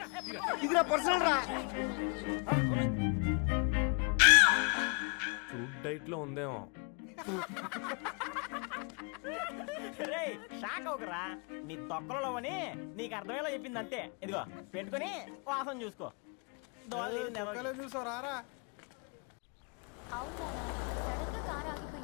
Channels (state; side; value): quieter; right; 38.3 dB